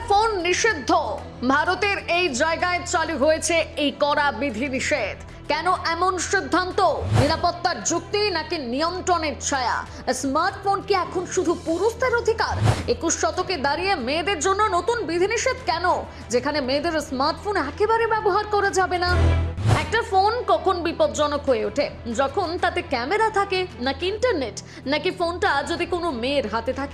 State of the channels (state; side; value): identical; both; correlation 1.00